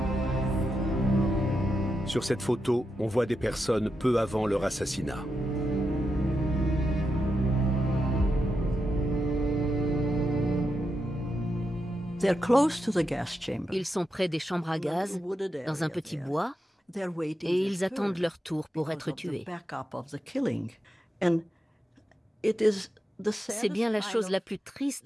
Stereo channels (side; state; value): both; normal; correlation 0.86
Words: Sur cette photo, on voit des personnes peu avant leur assassinat. Ils sont près des chambres à gaz, dans un petit bois, et ils attendent leur tour pour être tués. C'est bien la chose la plus